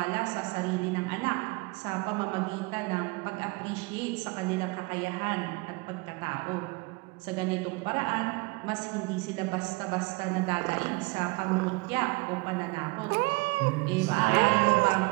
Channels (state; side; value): quieter; left; 27.0 dB